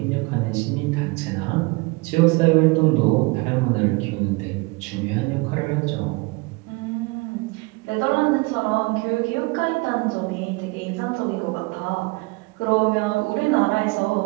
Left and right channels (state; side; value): quieter; left; 25.9 dB